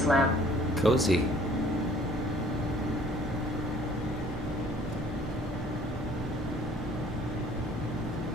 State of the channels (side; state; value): both; normal; correlation 0.55